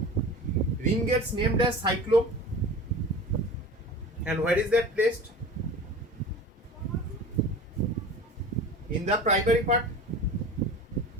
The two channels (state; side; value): normal; both; correlation 0.36